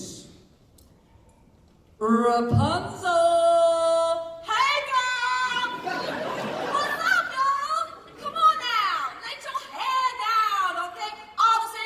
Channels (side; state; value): both; identical; correlation 1.00